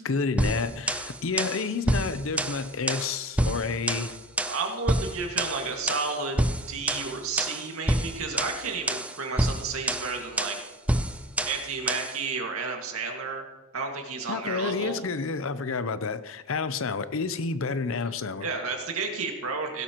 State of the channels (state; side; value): normal; both; correlation 0.29